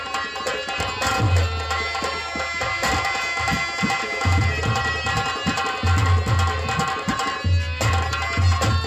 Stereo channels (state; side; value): identical; both; correlation 1.00